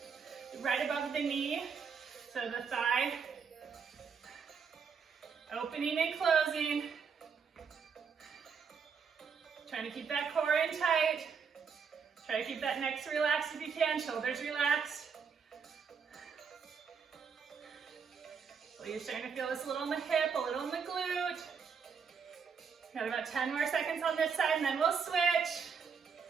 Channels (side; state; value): left; quieter; 6.1 dB